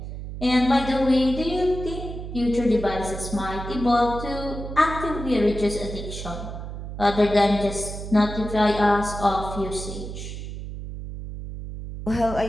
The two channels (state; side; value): noise; right; hum, 8 dB below the sound